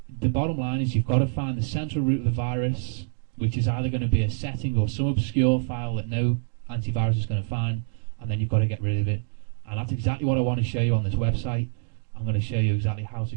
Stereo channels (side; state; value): left; silent; digital silence